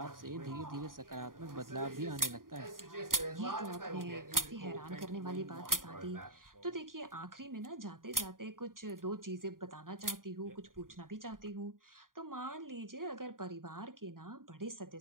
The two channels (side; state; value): left; late; 0.91 ms